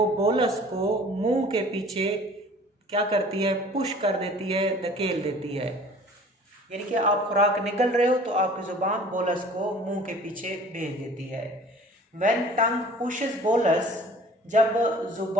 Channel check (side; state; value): both; normal; correlation 0.48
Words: बोलस को मुंह के पीछे क्या करती है, पुश कर देती है, धकेल देती है। यानी कि आप खुराक निगल रहे हो तो आपकी जुबान बोलस को मुंह के पीछे भेज देती है। व्हेन टंग पुशेस बोलस, जब